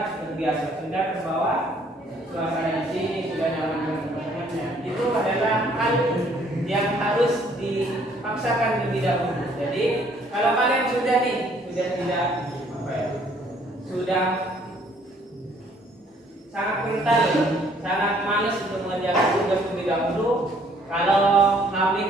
terbiasa, sudah terbawa suasana di sini, sudah nyaman dengan teman-temannya. Itu adalah hal yang harus dipaksakan lebih dahulu. Jadi kalau kalian sudah tidak sudah sangat kental, sangat malas untuk mengerjakan tugas terlebih dahulu. Kalau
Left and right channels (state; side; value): normal; both; correlation 0.62